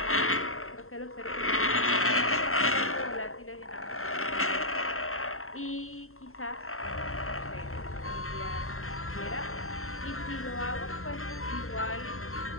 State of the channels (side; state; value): right; late; 0.62 ms